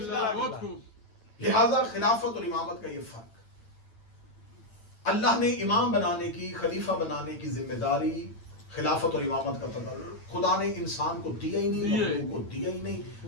اللہ، بہت خوب، لہذا خلافت اور امامت کا یہ فرق، اللہ نے امام بنانے کی، خلیفہ بنانے کی ذمہ داری خلافت اور امامت کا تدبر خدا نے انسان کو دیا ہی نہیں، مخلوق کو دیا ہی نہیں۔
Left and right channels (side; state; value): right; late; 9.0 ms